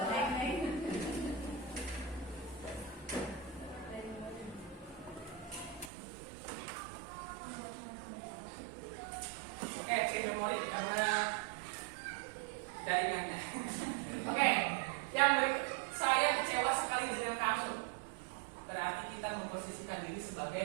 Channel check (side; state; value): left; drops out; at 5.9 s